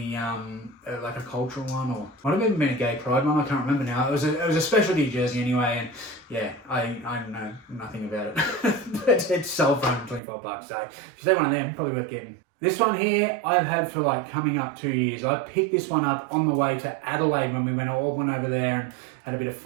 like a cultural one, or might have even been a gay pride one. I can't remember now. It was a specialty jersey anyway, and yeah, I know nothing about it. But it's sold for $125. So if you say one of them, probably worth getting. This one here, I've had for like coming up 2 years. I picked this one up on the way to Adelaide when we all went over there and had a bit of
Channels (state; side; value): drops out; left; at 10.2 s